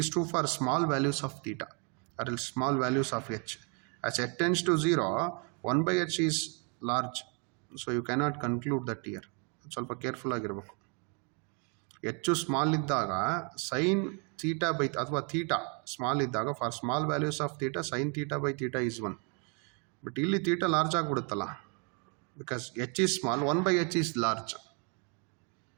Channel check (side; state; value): left; quieter; 36.4 dB